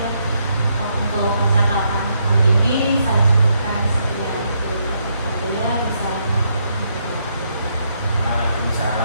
untuk percakapan hari ini.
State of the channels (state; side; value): inverted; both; correlation -0.76